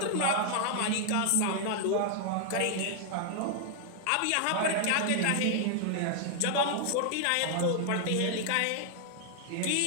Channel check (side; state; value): both; different; correlation -0.01